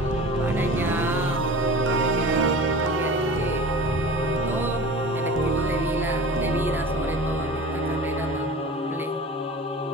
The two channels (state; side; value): normal; both; correlation 0.37